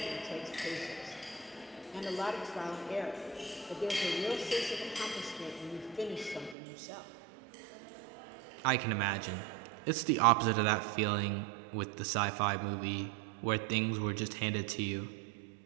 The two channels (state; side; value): drops out; left; at 6.6 s